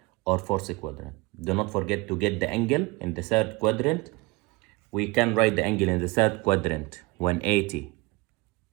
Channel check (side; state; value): left; quieter; 24.2 dB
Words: not forget to get the angle in the third quadrant. We can write the angle in the third quadrant 180